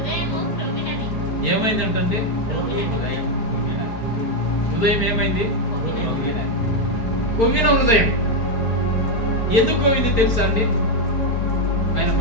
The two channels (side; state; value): right; late; 4.4 ms